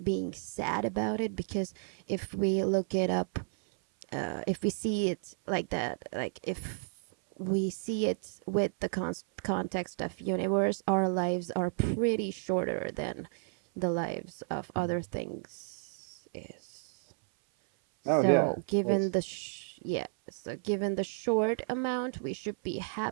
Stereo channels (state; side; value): silent; left; 56 dB below the other